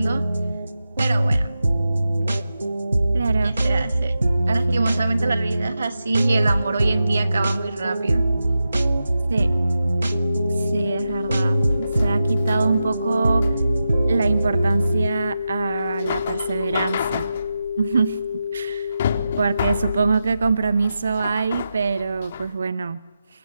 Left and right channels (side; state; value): both; inverted; correlation -0.89